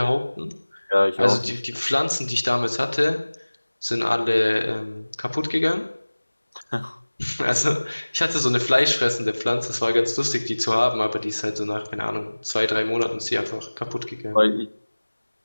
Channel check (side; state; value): both; inverted; correlation -1.00